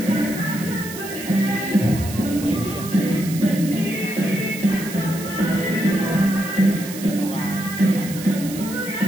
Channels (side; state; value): right; noise; hiss, 12 dB below the sound